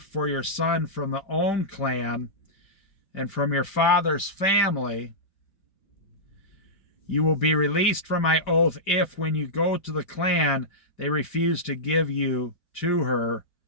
for your son from the own clan and from your father's family. You will be released from my oath if, when you go to the clan, they refuse to give you to her.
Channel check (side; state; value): right; late; 5.2 ms